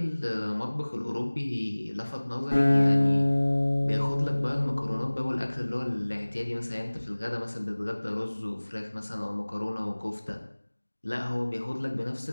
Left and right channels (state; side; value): inverted; both; correlation -1.00